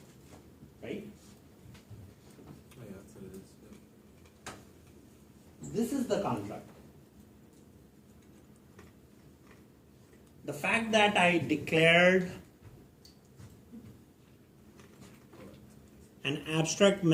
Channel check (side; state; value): both; identical; correlation 1.00